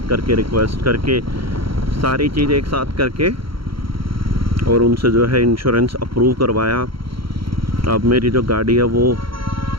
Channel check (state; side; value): late; left; 0.74 ms